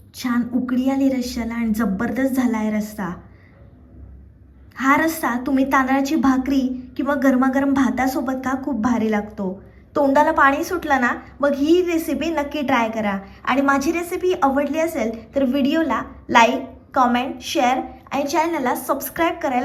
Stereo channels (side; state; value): both; identical; correlation 1.00